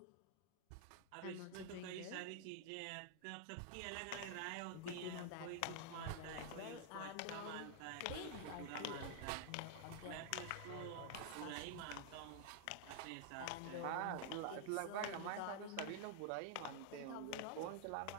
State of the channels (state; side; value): different; both; correlation 0.00